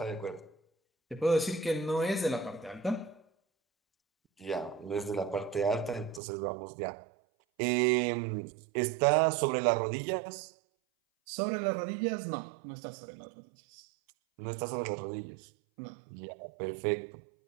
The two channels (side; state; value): left; drops out; at 6.2 s